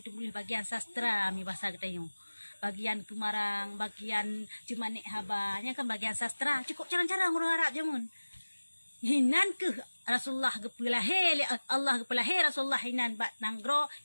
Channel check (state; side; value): inverted; both; correlation -1.00